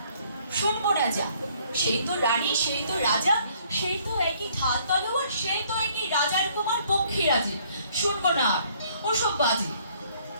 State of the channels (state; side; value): inverted; both; correlation -0.62